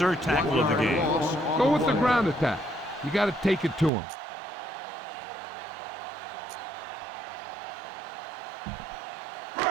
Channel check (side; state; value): left; drops out; at 3.9 s